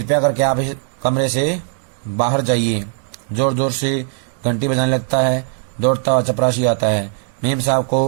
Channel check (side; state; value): left; silent; digital silence